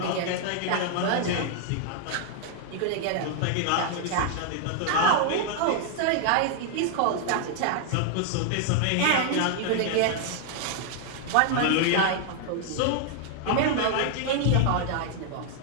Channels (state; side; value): different; both; correlation 0.00